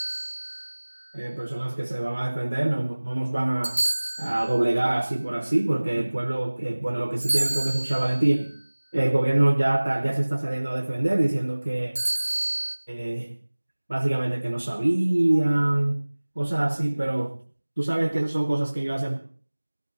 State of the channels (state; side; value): inverted; both; correlation -1.00